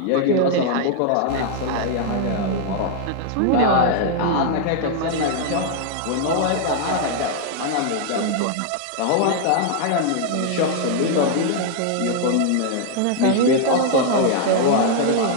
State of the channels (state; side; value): different; both; correlation -0.01